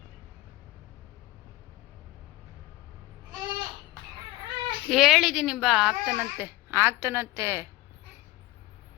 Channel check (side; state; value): right; quieter; 18.6 dB